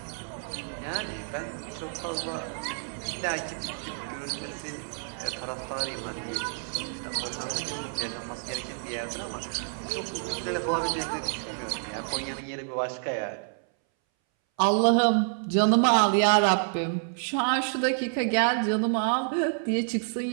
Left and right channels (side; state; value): left; silent; 59 dB below the other